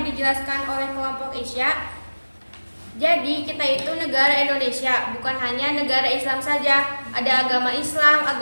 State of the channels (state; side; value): inverted; both; correlation -1.00